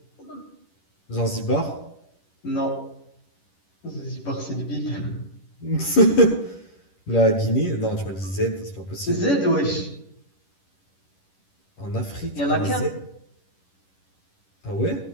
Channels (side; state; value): right; late; 11 ms